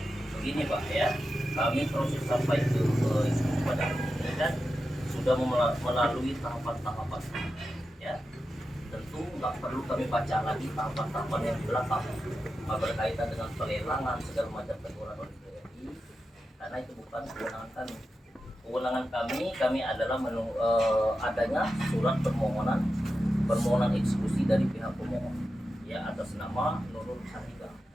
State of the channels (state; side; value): normal; both; correlation 0.90